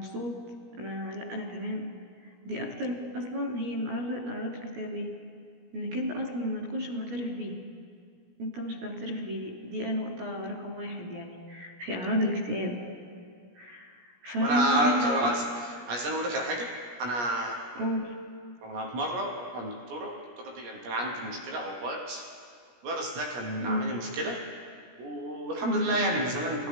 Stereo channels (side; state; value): left; late; 17 ms